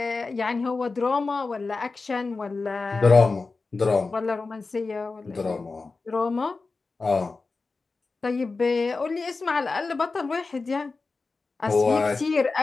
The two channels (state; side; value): quieter; right; 4.0 dB